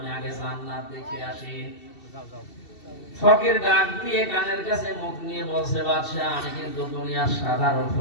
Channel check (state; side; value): late; right; 2.7 ms